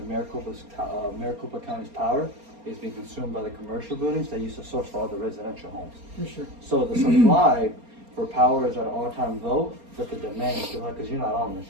Maricopa County's power is being consumed by the commercial buildings that used to source for all the residential homes. For sure. So the supply for power is at an all-time low, but the demand is still high because you're not Amish,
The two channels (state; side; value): late; left; 4.3 ms